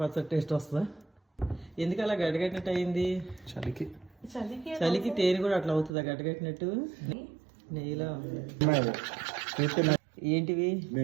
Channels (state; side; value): drops out; left; at 5.9 s